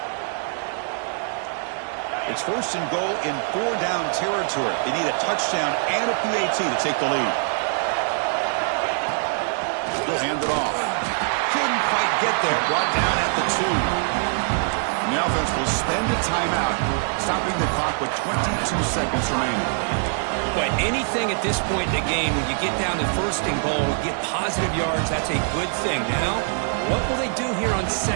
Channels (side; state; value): left; silent; 63 dB below the other